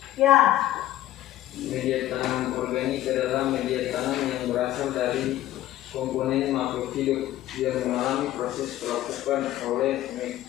Ya. Media tanam organik adalah media tanam yang berasal dari komponen makhluk hidup yang mengalami proses pelapukan oleh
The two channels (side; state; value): right; quieter; 14.2 dB